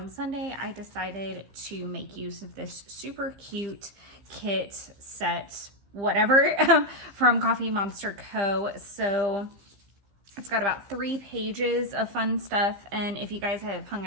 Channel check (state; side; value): late; left; 15 ms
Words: Sunday, I decided to make use of this super cute kit set, whatever, from Coffee Monster Co. So it's got about 3 pages of fun stuff, and if you guys have hung